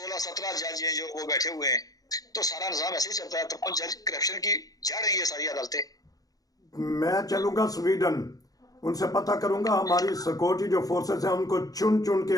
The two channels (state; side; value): late; right; 0.18 ms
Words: जज हैं जो वो बैठे हुए हैं। तो सारा निजाम ऐसे ही चलता है। तो जज करप्शन की जड़ रही है सारी अदालतें। मैं चलूंगा स्वीडन, उनसे पता करूंगा हमारी सिक्योरिटी जो फोर्सेस हैं उनको चुन चुन के,